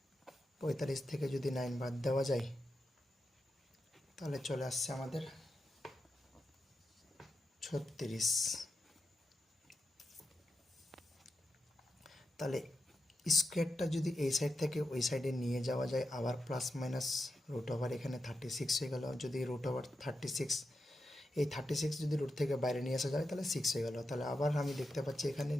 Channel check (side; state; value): both; normal; correlation 0.88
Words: 45 থেকে যদি 9 বাদ দেওয়া যায় তাহলে চলে আসছে আমাদের 36। তাহলে স্কোয়ারটা যদি এই সাইড থেকে ওই সাইডে নিয়ে যাওয়া যায়, আবার প্লাস মাইনাস রুট ওভার এখানে 36 হয়ে গেল। যদি রুট ওভার 36, এই 36 যদি রুট থেকে বাইরে নিয়ে আসা যায় তাহলে 6 হয়ে গেল। তাহলে আবার আমি দেখতে পাচ্ছি এখানে